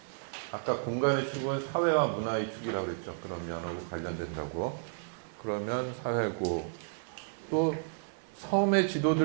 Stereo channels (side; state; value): left; silent; digital silence